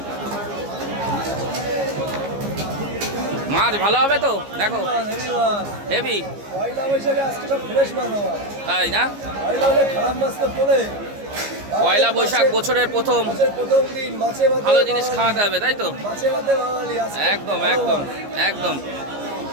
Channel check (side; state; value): left; late; 15 ms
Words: মাছ ভালো হবে তো, দেখো হেভি। তাই না, পয়লা বৈশাখ বছরের প্রথম ভালো জিনিস খাওয়াতে হবে, তাই তো? একদম একদম একদম।